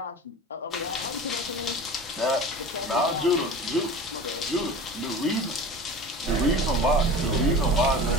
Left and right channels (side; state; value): both; normal; correlation 0.36